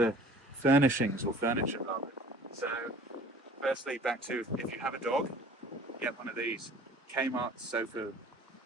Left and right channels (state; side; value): normal; both; correlation 0.48